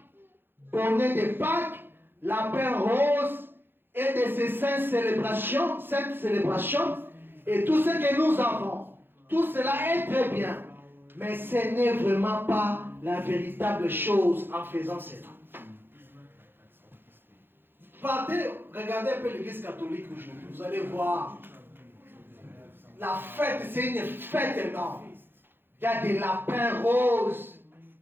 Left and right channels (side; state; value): left; late; 0.10 ms